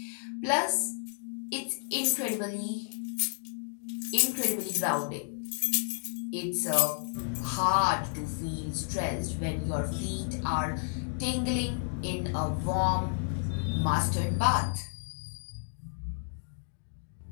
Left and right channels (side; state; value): right; silent; digital silence